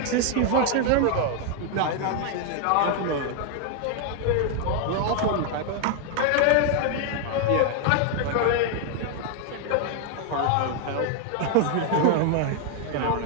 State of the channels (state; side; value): different; both; correlation 0.00